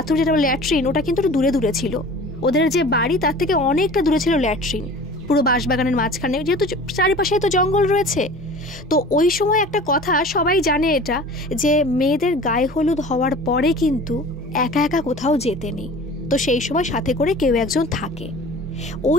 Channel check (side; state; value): both; normal; correlation 0.41